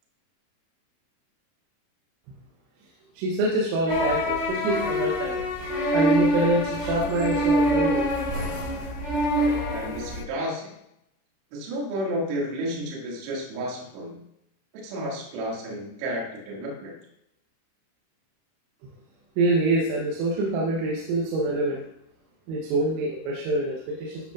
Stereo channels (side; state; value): left; late; 31 ms